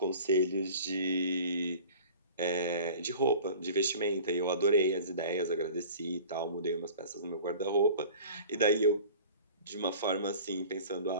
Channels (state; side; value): inverted; both; correlation -0.42